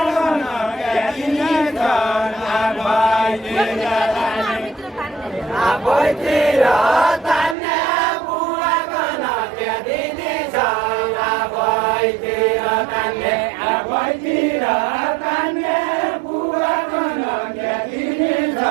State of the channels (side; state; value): left; drops out; at 7.6 s